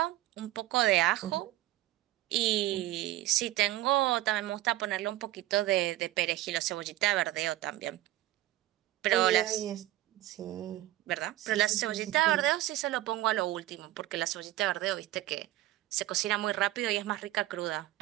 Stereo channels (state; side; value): quieter; left; 15.6 dB